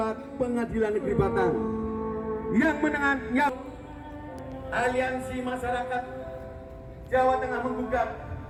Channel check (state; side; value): identical; both; correlation 1.00